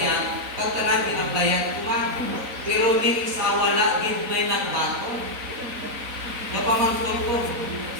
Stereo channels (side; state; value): left; late; 3.9 ms